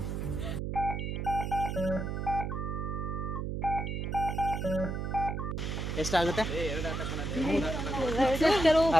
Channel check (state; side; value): noise; right; hum, 3 dB below the sound